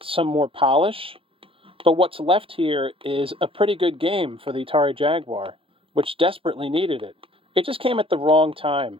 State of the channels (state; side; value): late; left; 0.26 ms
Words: some more polish, but what's left here is a pretty good game for the Atari Jaguar, which desperately needed it. It just came at the wrong time.